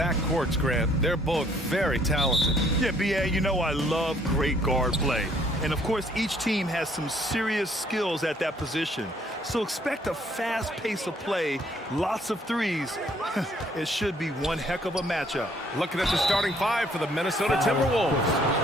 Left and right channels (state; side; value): normal; both; correlation 0.63